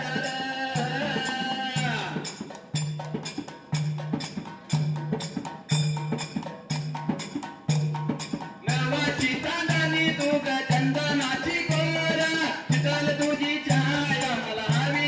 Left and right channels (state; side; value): identical; both; correlation 1.00